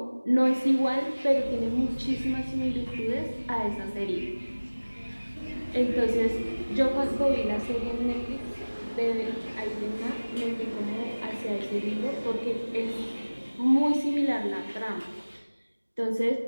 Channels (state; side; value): inverted; both; correlation -1.00